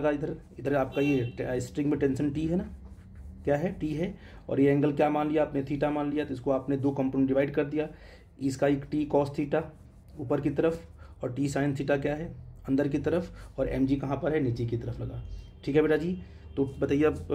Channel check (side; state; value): both; identical; correlation 1.00